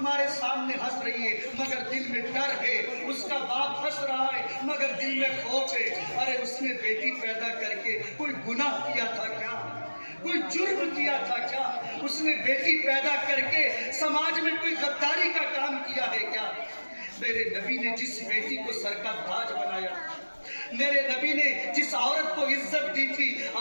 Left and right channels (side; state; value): both; inverted; correlation -1.00